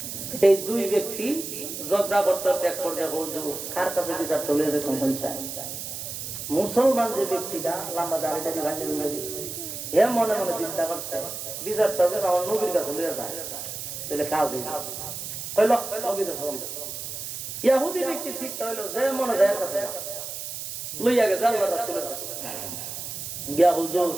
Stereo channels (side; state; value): right; noise; hiss, 7 dB below the sound